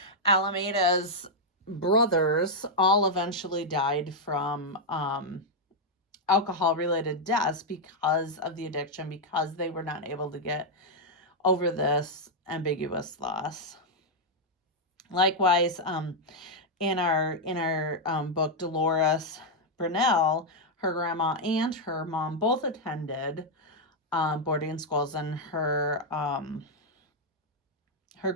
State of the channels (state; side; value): normal; both; correlation -0.02